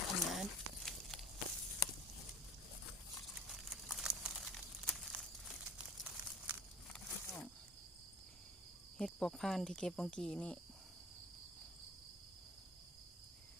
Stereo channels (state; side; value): normal; both; correlation 0.46